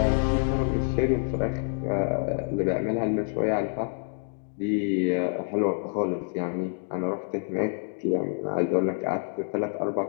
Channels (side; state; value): right; silent; digital silence